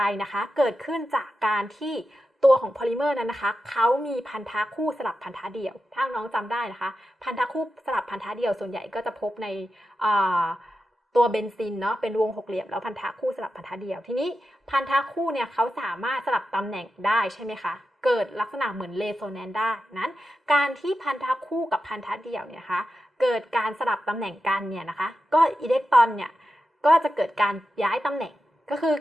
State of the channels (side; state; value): both; normal; correlation 0.90